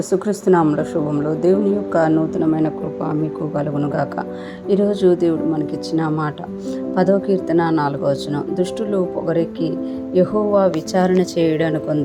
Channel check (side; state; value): both; identical; correlation 1.00